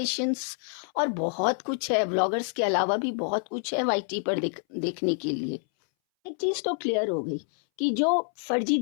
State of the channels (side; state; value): right; silent; 60 dB below the other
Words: और बहुत कुछ है, व्लॉगर्स के अलावा भी बहुत कुछ है वाईटी पर देखने के लिए। एक चीज़ तो क्लियर हो गई कि जो फर्जी